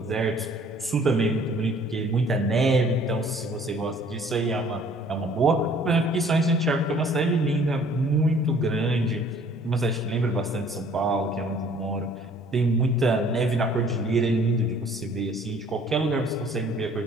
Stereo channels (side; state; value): both; normal; correlation 0.56